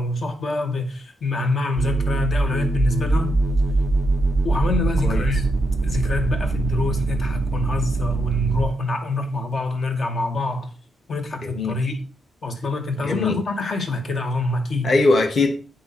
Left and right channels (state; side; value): normal; both; correlation 0.80